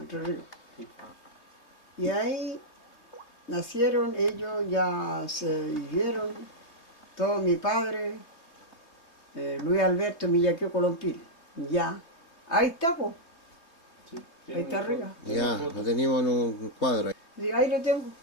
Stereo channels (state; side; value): late; right; 3.2 ms